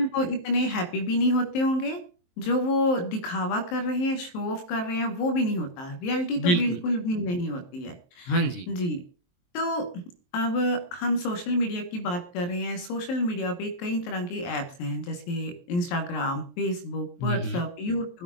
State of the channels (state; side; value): late; right; 23 ms